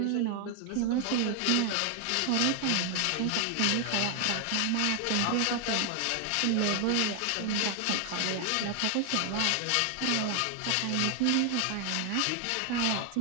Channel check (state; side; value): different; both; correlation 0.00